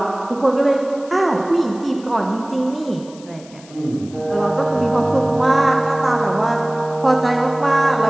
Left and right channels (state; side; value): noise; left; hiss, 23 dB below the sound